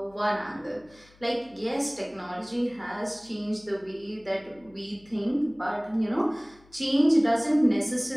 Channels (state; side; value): noise; left; hum, 28 dB below the sound